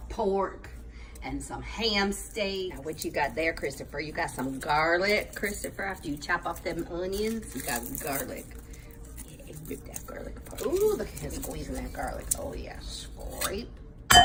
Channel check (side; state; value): both; identical; correlation 1.00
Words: pork and some ham steak. Now, what you got there, Christopher? You got some garlic, Christopher. After you chop off them onions, you got garlic. Yeah, rip that garlic apart. Ooh, look at him squeezing that garlic. Oh yeah, scrape.